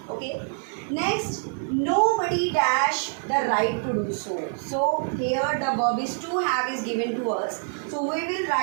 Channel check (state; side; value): silent; left; 61 dB below the other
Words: Okay. Next, nobody dash the right to do so. So here the verb is to have is given to us. So we will